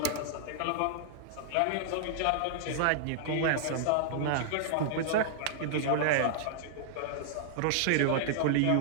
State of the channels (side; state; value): both; different; correlation -0.01